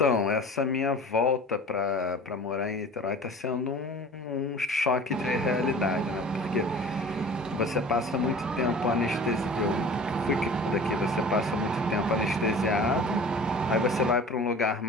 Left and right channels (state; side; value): normal; both; correlation 0.42